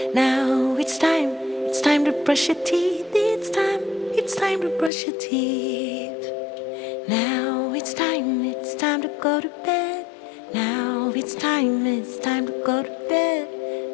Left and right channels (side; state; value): right; drops out; at 4.9 s